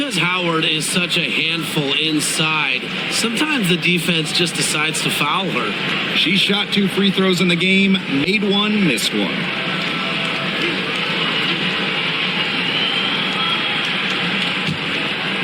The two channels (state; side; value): identical; both; correlation 1.00